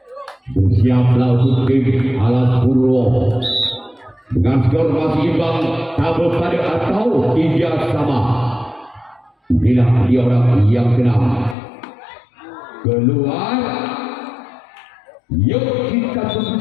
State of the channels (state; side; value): drops out; right; at 11.6 s